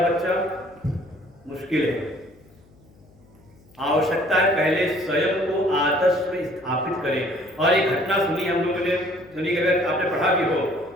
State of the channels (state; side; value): noise; left; hum, 28 dB below the sound